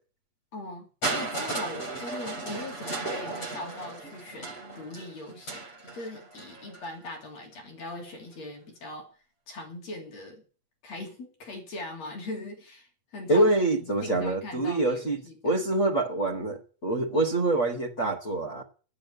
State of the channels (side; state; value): right; late; 8.4 ms